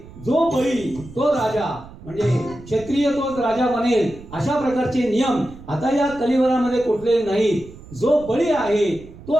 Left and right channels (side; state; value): right; noise; rumble, 18 dB below the sound